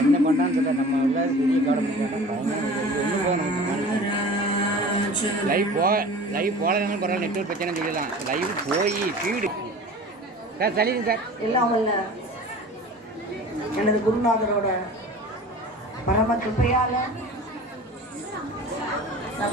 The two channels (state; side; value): normal; both; correlation 0.40